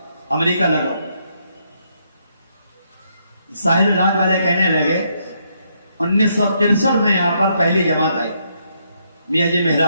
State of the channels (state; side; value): inverted; both; correlation -0.75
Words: अमेरिका लगाओ। साहिल राज वाले कहने लगे 1963 में यहां पर पहली जमात आई, मियाँ जी